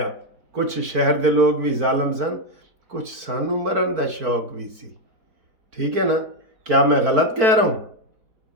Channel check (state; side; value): late; left; 4.5 ms